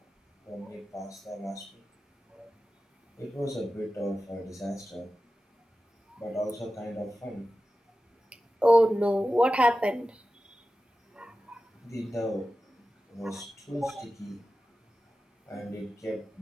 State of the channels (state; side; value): normal; both; correlation 0.94